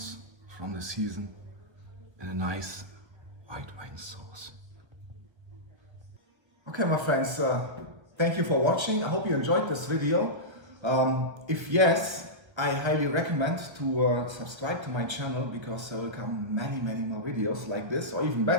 from the season in a nice white wine sauce. Okay, my friends, thank you for watching. I hope you enjoyed this video. If yes, I highly recommend to subscribe to my channel, because there will come many more videos like this, or even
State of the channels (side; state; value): left; late; 1.4 ms